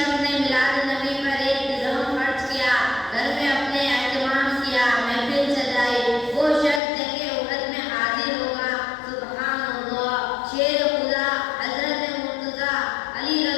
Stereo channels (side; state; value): right; drops out; at 6.8 s